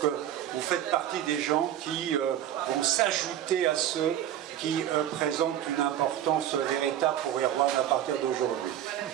que vous faites partie des gens qui vont s'ajouter à ceux qui présentent une importance véritable pour Erwan à partir d'aujourd'hui.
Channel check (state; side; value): quieter; left; 11.2 dB